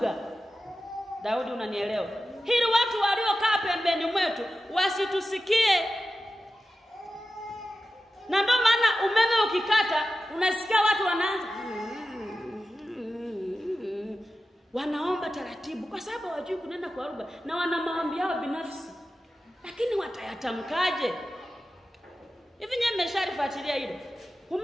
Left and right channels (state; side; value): normal; both; correlation 0.93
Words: Daudi, unanielewa? Hili watu waliokaa pembeni mwetu wasitusikie. Na ndio maana umeme ukikata unasikia watu wanaanza wanaomba taratibu kwa sababu hawajui kunena kwa lugha na wana maombi yao binafsi. Lakini watayatamkaje? Hivi nyewe mmesharifuatilia hilo?